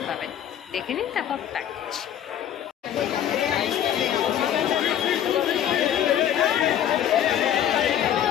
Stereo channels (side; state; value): right; quieter; 10.4 dB